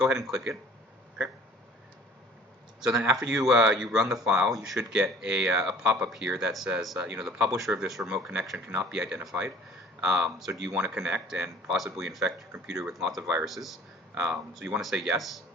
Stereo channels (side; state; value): both; normal; correlation 0.49